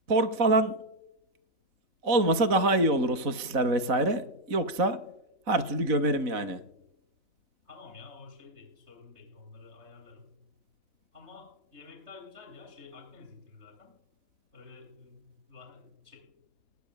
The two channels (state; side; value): late; left; 4.0 ms